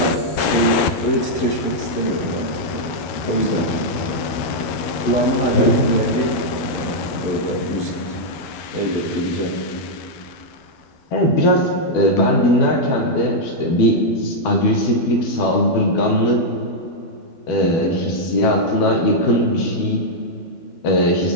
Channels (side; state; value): right; late; 13 ms